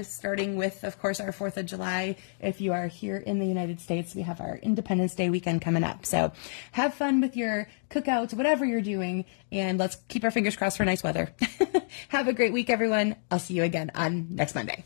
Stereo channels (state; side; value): silent; right; digital silence